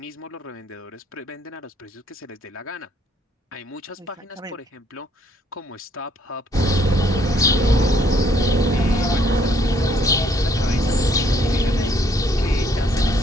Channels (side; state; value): both; normal; correlation 0.66